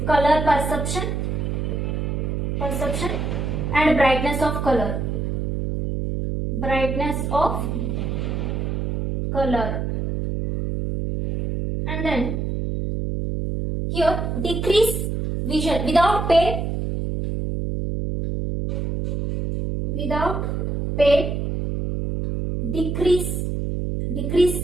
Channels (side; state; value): right; noise; hum, 1 dB below the sound